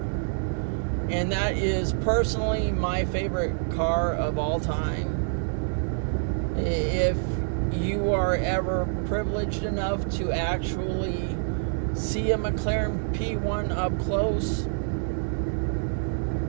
And that is personally my favorite car of all time. If you are ever privileged enough to actually see a McLaren P1 up close,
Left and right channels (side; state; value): left; silent; digital silence